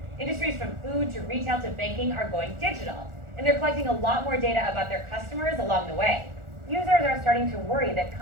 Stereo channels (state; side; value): late; left; 1.4 ms